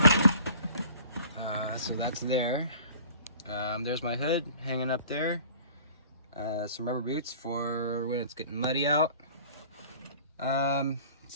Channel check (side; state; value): both; inverted; correlation -0.48